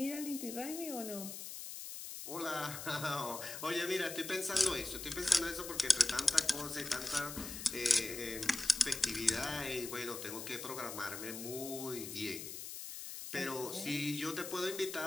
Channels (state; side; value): noise; left; hiss, 8 dB below the sound